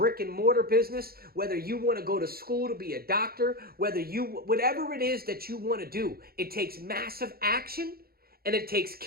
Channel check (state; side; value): late; left; 0.44 ms